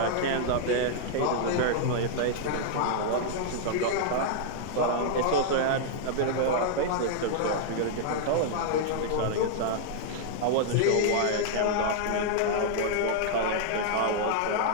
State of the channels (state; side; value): different; both; correlation -0.01